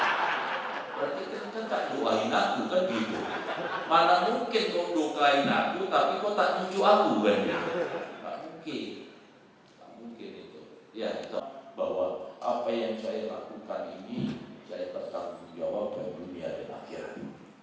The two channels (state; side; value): identical; both; correlation 1.00